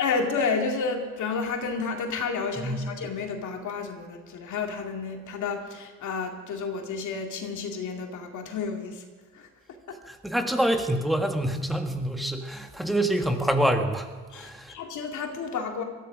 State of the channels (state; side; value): normal; both; correlation 0.44